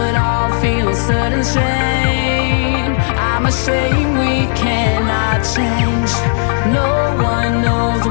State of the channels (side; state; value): right; silent; digital silence